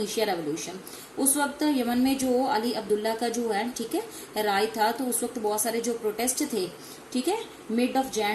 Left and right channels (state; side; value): identical; both; correlation 1.00